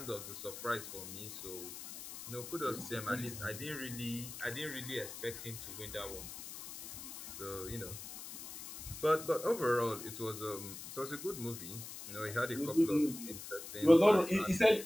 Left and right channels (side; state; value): left; noise; hiss, 11 dB below the sound